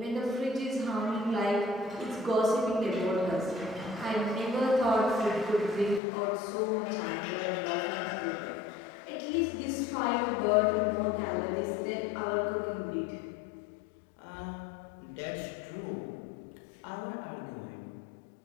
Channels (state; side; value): drops out; right; at 6.0 s